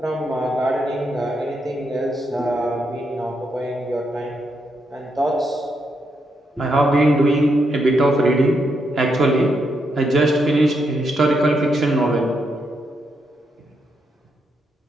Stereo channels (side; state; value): both; normal; correlation 0.80